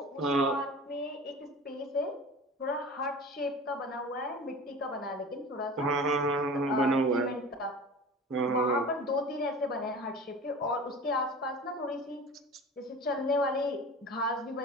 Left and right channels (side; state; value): both; normal; correlation 0.37